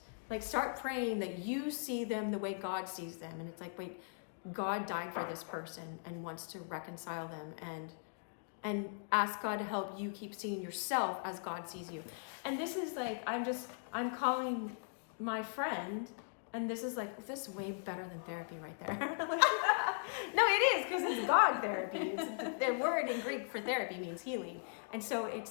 Like, start praying that you see them the way God sees them. And it's like, wait, God died for this person and wants to reconcile them, and ask God to help you keep seeing yourself as God sees you. And this is like, I'm calling my friend, and this is like, this is way better than therapy right there. No, it is, because it's God therapy. It's the word in Greek for therapy means healing. And so it's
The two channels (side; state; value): right; silent; digital silence